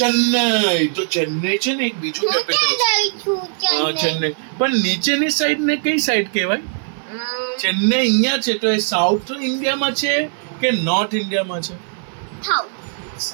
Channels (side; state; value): left; silent; 58 dB below the other